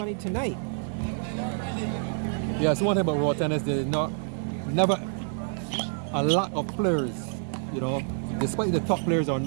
tonight. Yes, one thing about road tennis, there's never a lot of players, you know, despite the top players are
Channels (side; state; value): left; silent; 59 dB below the other